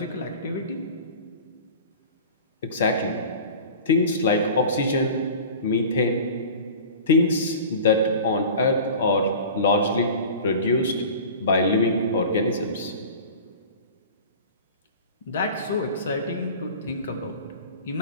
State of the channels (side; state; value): both; inverted; correlation -0.39